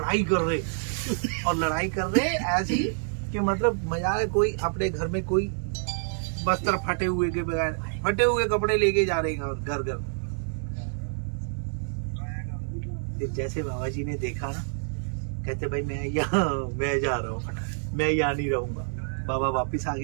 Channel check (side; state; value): left; silent; digital silence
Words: कर रहे, और लड़ाई कर रहे ऐसी कि मतलब मजा है। कोई अपने घर में कोई बस्तर फटे हुए के बगैर फटे हुए कपड़े लेके जा रहे हैं और घर घर। फिर जैसे बाबा जी ने देखा ना, कहते भाई मैं जा रहा हूँ, मैं यहाँ नहीं रहूंगा। बाबा वापिस आ